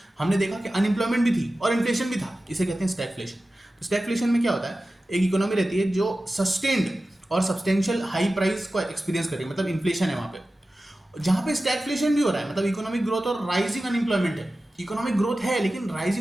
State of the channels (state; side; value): normal; both; correlation 0.95